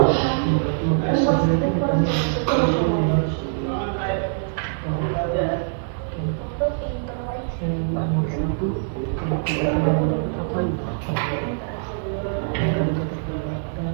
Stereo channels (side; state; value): left; silent; digital silence